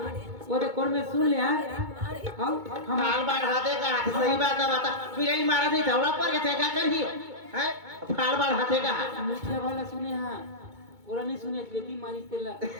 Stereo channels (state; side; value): late; left; 2.2 ms